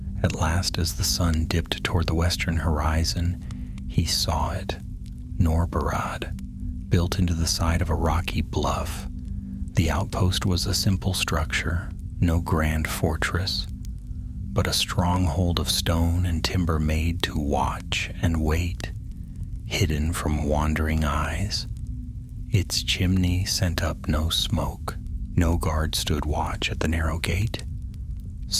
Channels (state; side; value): identical; both; correlation 1.00